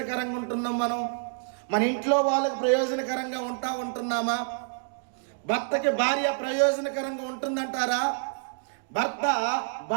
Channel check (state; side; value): silent; left; digital silence